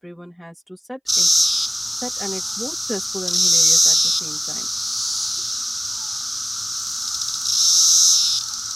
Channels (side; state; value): both; identical; correlation 1.00